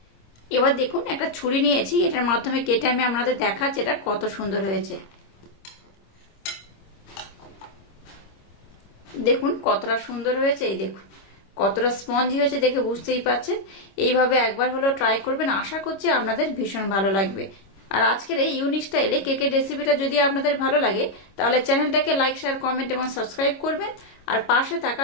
এবার দেখুন একটা ছুরি নিয়েছি, এটার মাধ্যমে কেটে আমি আপনাদের দেখাচ্ছি এটা কত সুন্দর হয়েছে। দেখুন কতটা সুন্দর হয়েছে, এই দেখুন কতটা স্পঞ্জি হয়েছে দেখে বুঝতেই পারছেন। এইভাবে একবার হলেও ট্রাই করবেন, আশা করছি আপনাদের ভীষণ ভালো লাগবে। আর আজকের এই ইউনিক স্টাইলে কেকের রেসিপিটা যদি আপনাদের ভালো লাগে তাহলে চ্যানেলটাকে লাইক, শেয়ার, কমেন্ট এবং সাবস্ক্রাইব করবেন আর পাশে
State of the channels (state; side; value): late; right; 26 ms